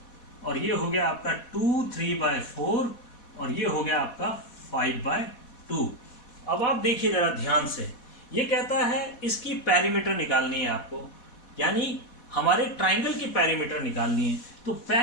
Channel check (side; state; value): right; late; 4.1 ms